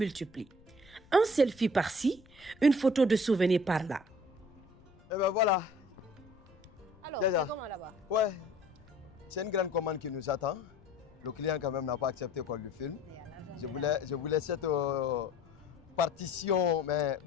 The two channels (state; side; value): noise; left; rumble, 26 dB below the sound